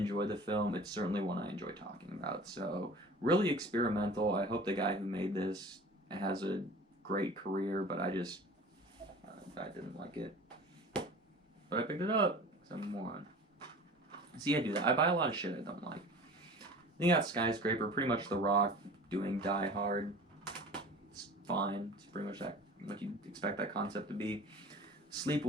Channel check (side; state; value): both; normal; correlation 0.41